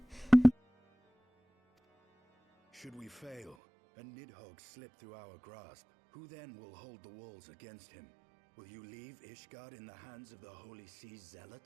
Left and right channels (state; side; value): drops out; left; at 3.6 s